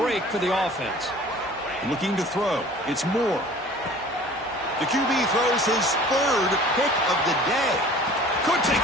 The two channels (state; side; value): normal; both; correlation 0.46